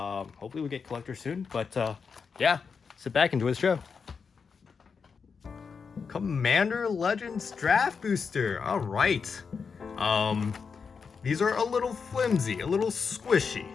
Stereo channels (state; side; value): quieter; right; 5.7 dB